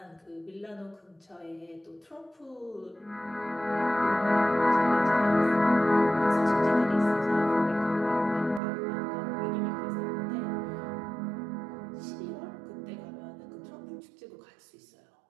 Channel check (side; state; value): left; drops out; at 8.6 s